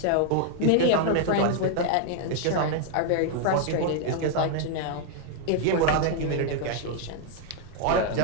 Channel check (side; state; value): both; different; correlation 0.00